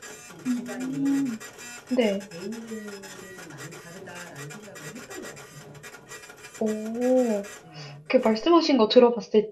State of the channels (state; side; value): identical; both; correlation 1.00